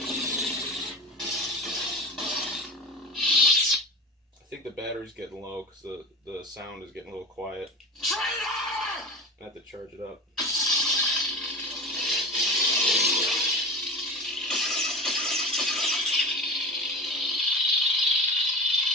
I think the battery's getting low because the sound is getting a little quiet. I have to charge it up.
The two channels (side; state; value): both; normal; correlation 0.31